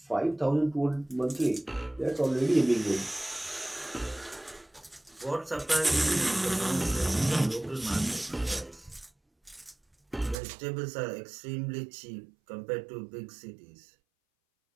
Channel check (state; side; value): drops out; left; at 10.4 s